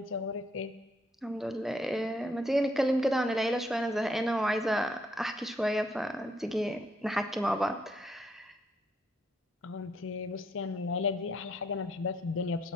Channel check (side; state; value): both; normal; correlation 0.72